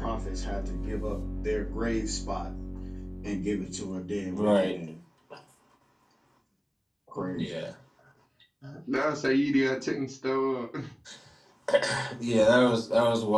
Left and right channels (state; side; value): identical; both; correlation 1.00